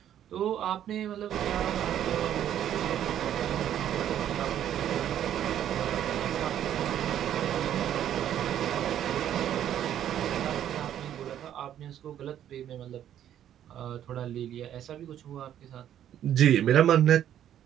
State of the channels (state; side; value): quieter; left; 10.7 dB